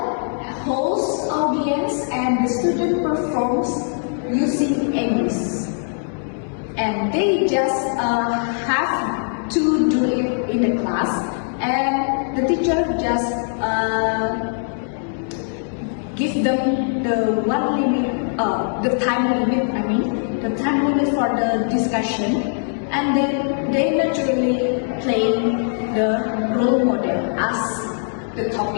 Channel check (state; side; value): silent; right; digital silence